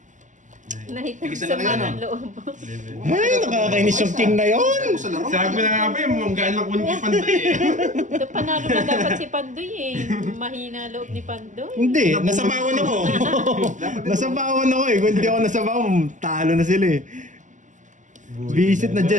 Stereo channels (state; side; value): late; left; 0.36 ms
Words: 9, Nahit Tigisa sa na kayo, mga no? loob. 11. Ay, nakakainis yung king na yun. Ako sa laro. Sabi na nga ba yung mga gaan lang kunin kay Pandoy eh. Ito, panalo na dapat si Pandoy eh. Mahina loob ni Pandoy. Hindi, nasabawan ako. Nasabawan ako eh. Kung hindi ako nasabawan, talo na sila eh. Visit na